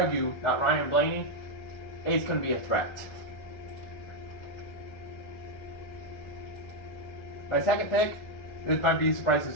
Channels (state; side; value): late; right; 1.4 ms